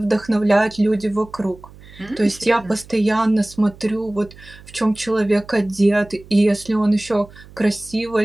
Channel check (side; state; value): right; noise; hum, 21 dB below the sound